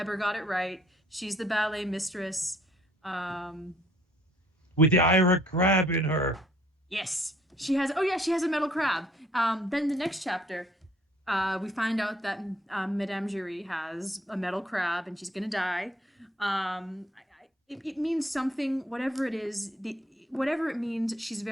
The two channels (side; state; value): both; normal; correlation 0.61